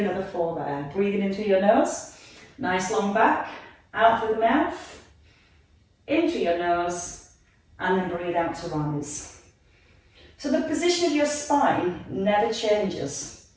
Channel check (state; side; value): identical; both; correlation 1.00